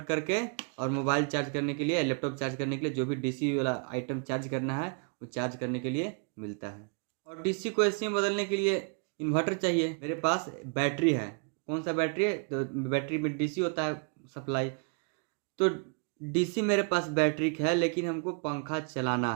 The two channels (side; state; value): left; quieter; 39.8 dB